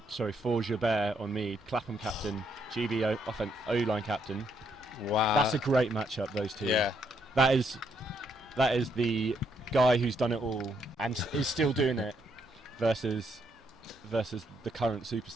sorry, for Giguere on Mead. Clapham captain, GB O-line captain. Wow, that's a great matchup. Those two. Yeah, that is the guy who's done it all and is still doing it versus the current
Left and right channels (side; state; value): both; normal; correlation 0.74